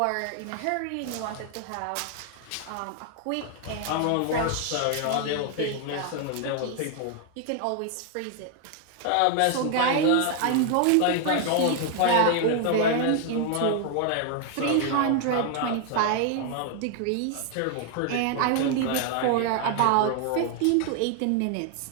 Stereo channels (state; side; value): different; both; correlation 0.00